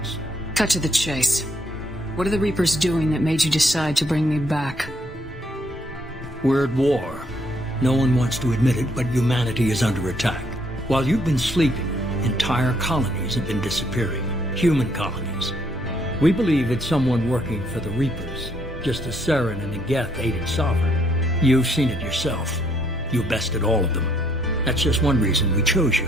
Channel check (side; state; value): both; normal; correlation 0.69